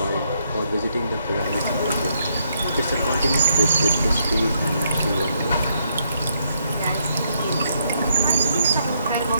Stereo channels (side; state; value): both; inverted; correlation -0.75